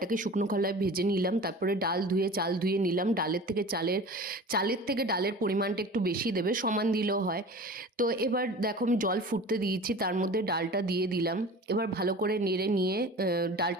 শুকনো খোলায় ভেজে নিলাম, তারপরে ডাল ধুয়ে চাল ধুয়ে নিলাম। চালের থেকে ডালের পরিমাণটা একটু বেশি দেবে, সমান দিলেও হয়। তো এবার দেখো আমি জল ফুটতে দিয়েছি, তার মধ্যে ডালটা দিয়ে দিলাম। এবার ভালো করে নেড়ে নিয়ে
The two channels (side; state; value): both; normal; correlation 0.38